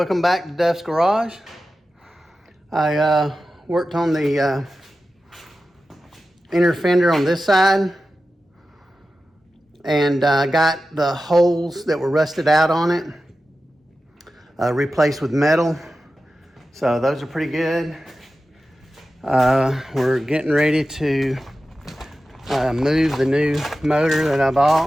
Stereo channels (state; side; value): normal; both; correlation 0.93